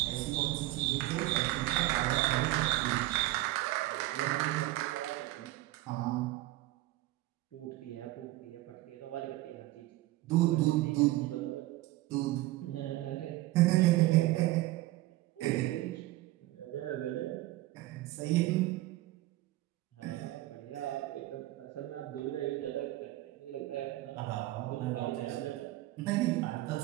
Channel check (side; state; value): left; quieter; 17.4 dB